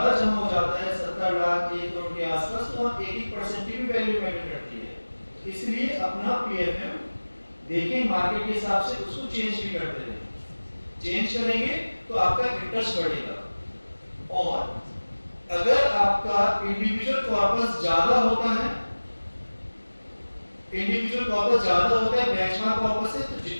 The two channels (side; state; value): both; inverted; correlation -1.00